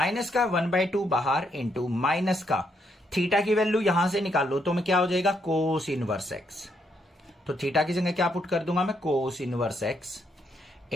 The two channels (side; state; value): both; normal; correlation 0.76